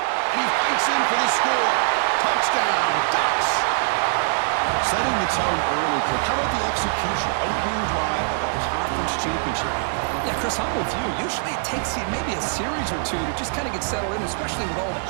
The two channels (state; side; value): silent; left; digital silence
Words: And he fights in for the score. Touchdown, Ducks. Setting the tone early, Kirk. How about the execution? Opening drive of a conference championship game. Yeah, Chris, I'm with you. Usually it takes maybe a series or two to just kind of get settled in, especially with all the